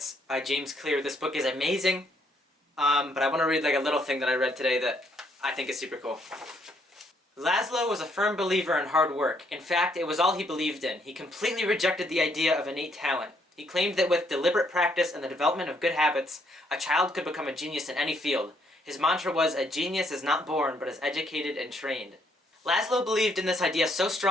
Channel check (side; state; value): both; normal; correlation 0.70